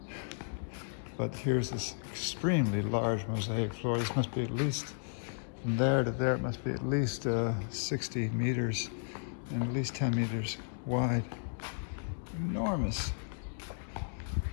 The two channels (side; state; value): right; silent; digital silence